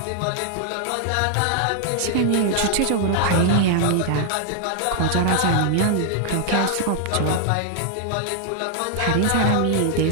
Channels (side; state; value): both; different; correlation 0.00